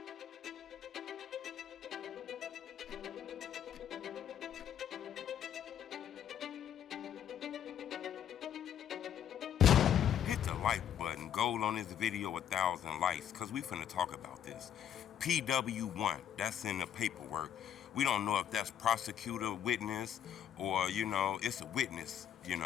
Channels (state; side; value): quieter; right; 9.6 dB